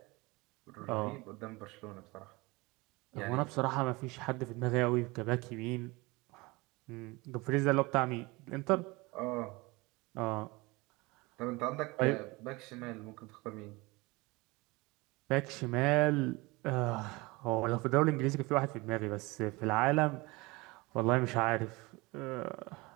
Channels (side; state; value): left; quieter; 23.6 dB